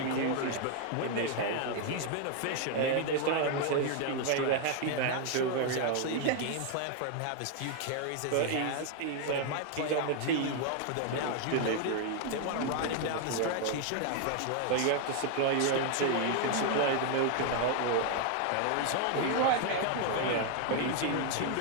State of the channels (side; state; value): both; different; correlation 0.00